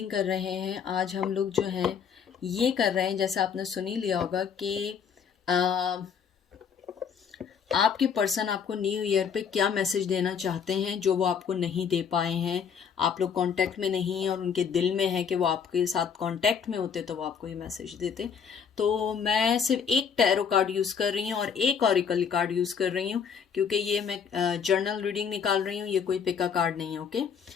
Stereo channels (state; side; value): quieter; right; 6.9 dB